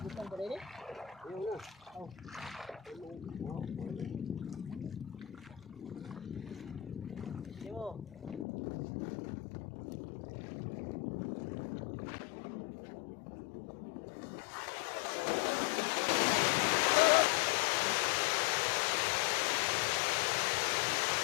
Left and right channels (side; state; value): right; drops out; at 8.5 s